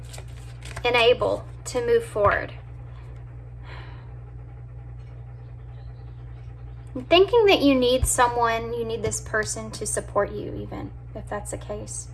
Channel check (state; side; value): identical; both; correlation 1.00